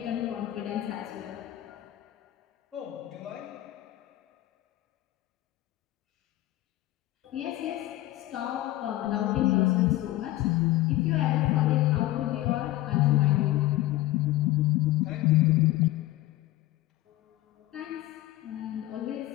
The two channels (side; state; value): right; quieter; 16.2 dB